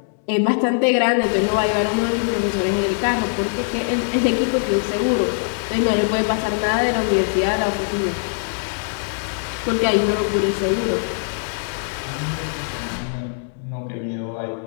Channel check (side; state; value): right; silent; digital silence